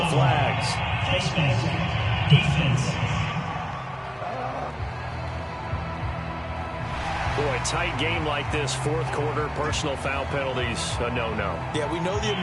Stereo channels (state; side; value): identical; both; correlation 1.00